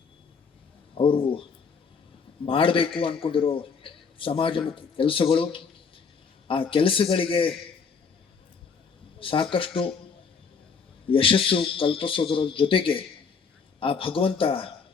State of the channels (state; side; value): quieter; right; 5.6 dB